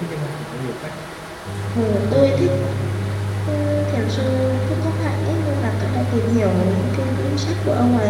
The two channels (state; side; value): identical; both; correlation 1.00